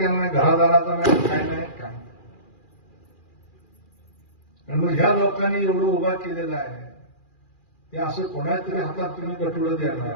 नाही, घरादाराचा नाही, काय नाही, काय नाही. आणि मग ह्या लोकांनी एवढं उभा केलेलं आहे, हे असं कोणाच्या तरी हातात तुम्ही गटुडं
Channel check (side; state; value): right; late; 2.4 ms